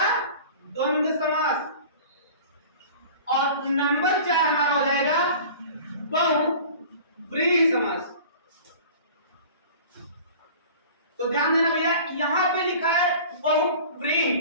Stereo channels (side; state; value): both; inverted; correlation -0.42